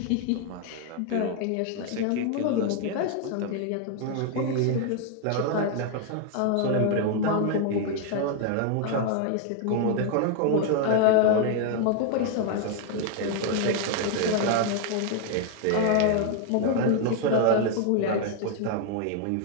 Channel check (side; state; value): both; different; correlation 0.00